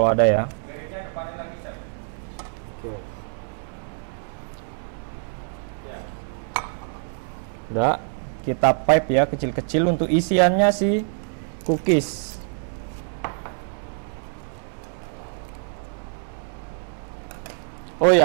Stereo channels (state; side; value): silent; left; 60 dB below the other